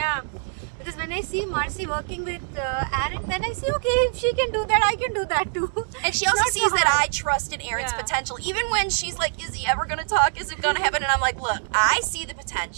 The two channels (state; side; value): silent; left; digital silence